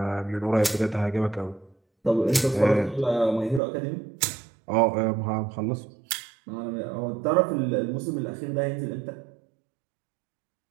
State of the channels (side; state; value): left; drops out; at 3.6 s